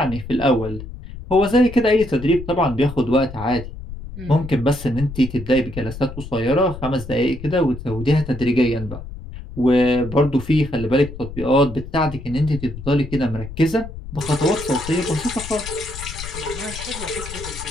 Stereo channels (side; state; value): left; noise; rumble, 12 dB below the sound